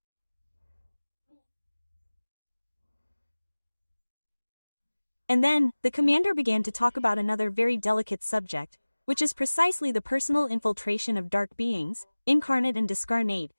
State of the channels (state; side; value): inverted; both; correlation -1.00